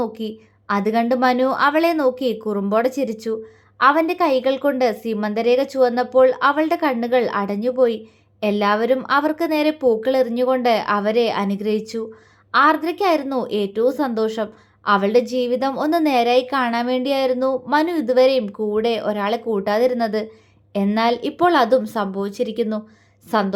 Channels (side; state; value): both; identical; correlation 1.00